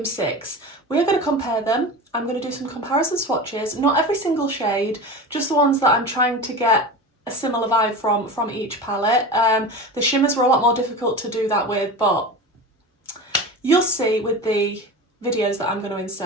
6. We are going to compare them. I'm going to do some comparison swatches, not every single shade, just the ones that I'm trying to get a similar vibe from each palette. The shimmers were a lot more difficult to do that with, but you'll see with the videos that I'm going to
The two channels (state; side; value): normal; both; correlation 0.29